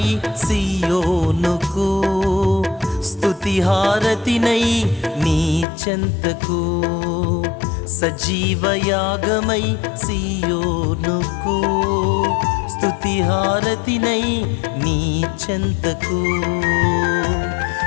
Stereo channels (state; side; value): drops out; right; at 5.7 s